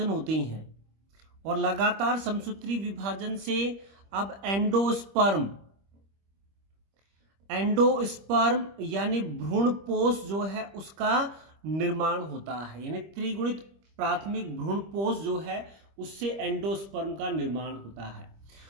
होते हैं, और लगातार समसूत्री विभाजन से अब एंडोस्पर्म यानी भ्रूणपोष जो है उसका निर्माण होता है। यानी त्रिगुणित प्राथमिक भ्रूणपोष जो है उससे एंडोस्पर्म का निर्माण होता है।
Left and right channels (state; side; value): late; left; 25 ms